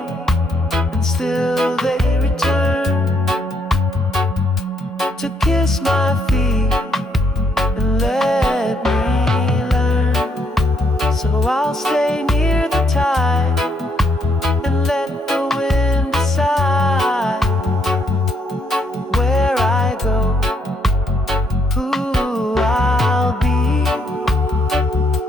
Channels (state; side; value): normal; both; correlation 0.72